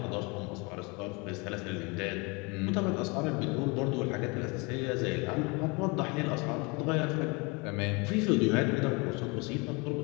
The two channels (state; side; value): quieter; right; 28.6 dB